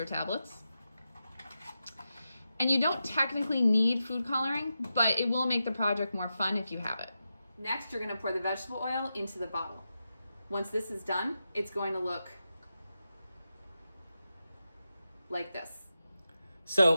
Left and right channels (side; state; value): both; inverted; correlation -0.90